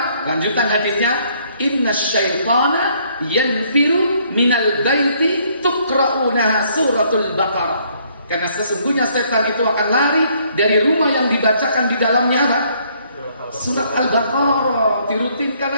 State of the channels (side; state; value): both; inverted; correlation -0.66